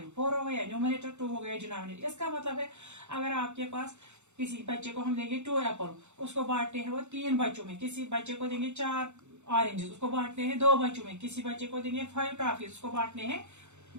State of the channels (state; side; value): late; left; 0.83 ms